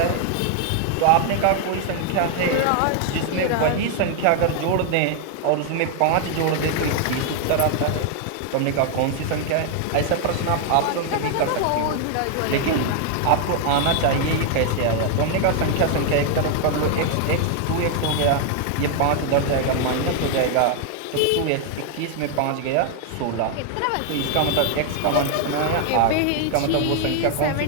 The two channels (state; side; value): different; both; correlation 0.00